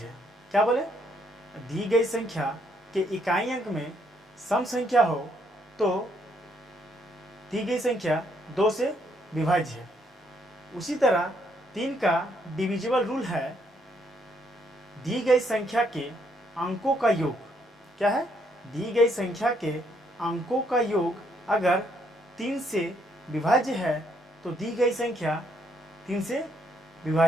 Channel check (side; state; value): both; normal; correlation 0.71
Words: है। क्या बोले, दी गई संख्या के इकाई अंक में सम संख्या हो तो दी गई संख्या 2 से विभाज्य है। उसी तरह 3 का डिविजिबल रूल है, दी गई संख्या के अंकों का योग। क्या है, दी गई संख्या के अंकों का योग अगर 3 से विभाज्य है तो दी गई संख्या 3 से